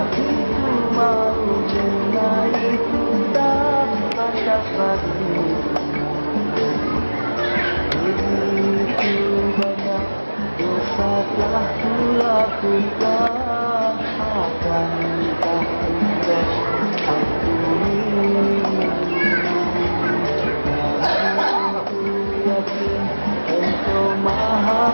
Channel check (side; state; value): both; inverted; correlation -1.00